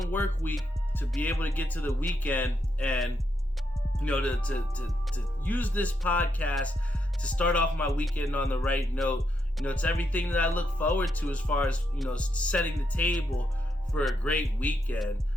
work week to be able to get to the weekend, and you know, to use this podcast to start off my weekend on the right note. You know, it's everything that I look forward to as far as, you know, setting the table for a great weekend.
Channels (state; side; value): normal; both; correlation 0.80